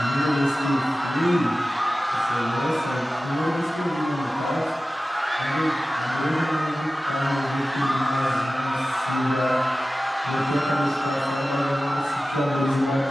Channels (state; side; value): normal; both; correlation 0.95